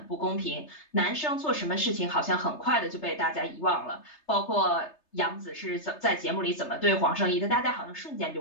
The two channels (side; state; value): right; late; 3.3 ms